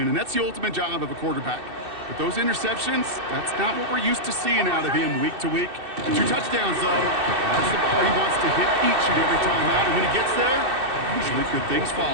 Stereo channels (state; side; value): late; left; 2.6 ms